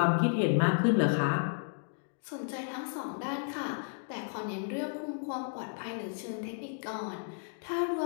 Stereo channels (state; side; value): silent; right; digital silence